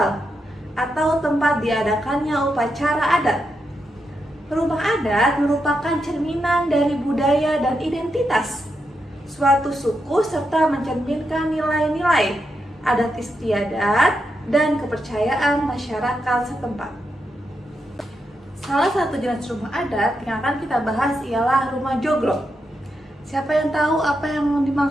atau tempat diadakannya upacara adat. Rumah adat merupakan cerminan dari budaya dan identitas suatu suku serta mencerminkan nilai-nilai adat istiadat, dan kepercayaan masyarakat setempat. Salah satu jenis rumah adat yang akan kita bahas ialah rumah joglo. Siapa yang tahu apa yang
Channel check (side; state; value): both; normal; correlation 0.84